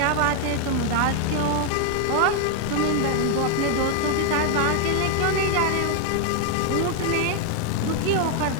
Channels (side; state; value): both; different; correlation 0.00